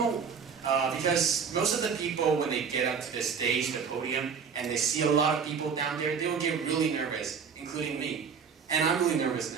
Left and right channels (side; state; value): left; quieter; 6.3 dB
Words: most of the people, when they get up to the stage, the podium, and they see a lot of people down there, they will get really nervous, including me. And I'm really nervous